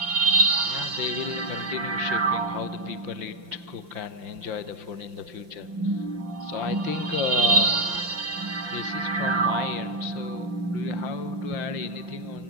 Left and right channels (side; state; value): left; late; 5.8 ms